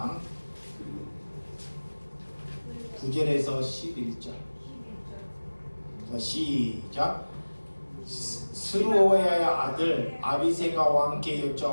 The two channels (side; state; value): both; inverted; correlation -1.00